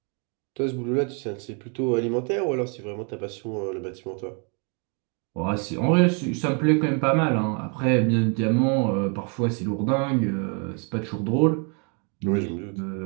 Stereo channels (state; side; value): quieter; left; 37.7 dB